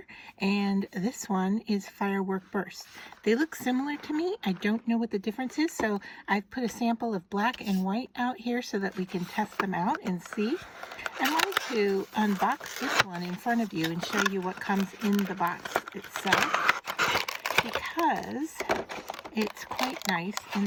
and this one is Firework Burst. They look similar to me. I don't know what the difference is, so I've put a sample of black and white out here so that we can test them out and see. I wanted to unbox this one in front of you and show you what comes in the box itself, because it's quite nice in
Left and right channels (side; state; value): both; identical; correlation 1.00